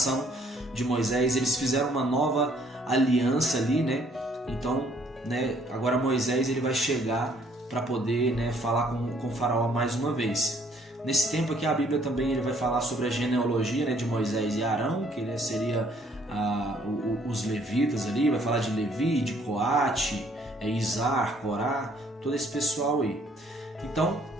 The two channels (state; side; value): normal; both; correlation 0.63